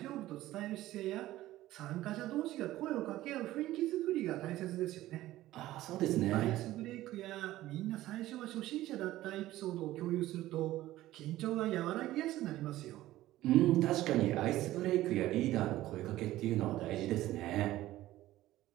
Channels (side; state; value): left; quieter; 15.5 dB